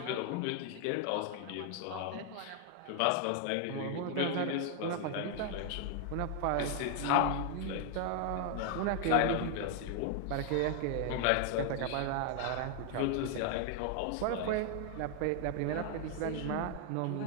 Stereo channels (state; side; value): different; both; correlation 0.00